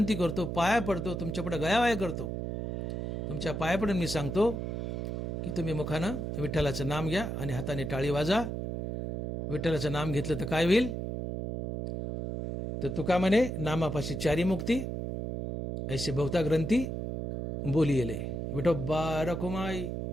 करतो, पाया पडतो, तुमच्यापुढे गयावाया करतो. तुमच्या पाया पडून मी सांगतो की तुम्ही मुखानं विठ्ठलाचं नाम घ्या आणि हाताने टाळी वाजा. विठ्ठलाचं नाम घेतलं तर काय होईल? तर तुका म्हणे नामापाशी चारी मुक्ती ऐसे बहुता ग्रंथी बोलिले. विठोबा रखुमाई,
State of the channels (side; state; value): right; noise; hum, 3 dB below the sound